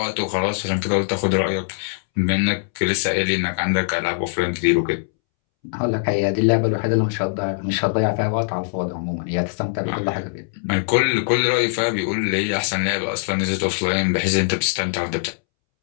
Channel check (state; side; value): silent; right; 64 dB below the other